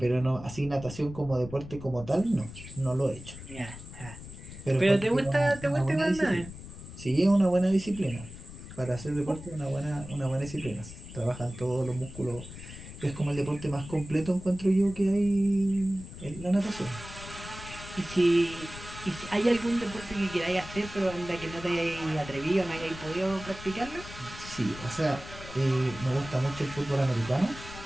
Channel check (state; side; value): noise; left; rumble, 13 dB below the sound